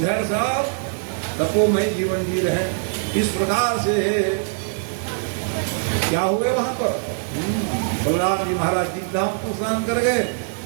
सब तपोमय जीवन जी रहे। इस प्रकार से क्या हुए वहां पर बलराम जी महाराज जी धाम को स्नान कर गए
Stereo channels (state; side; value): silent; left; digital silence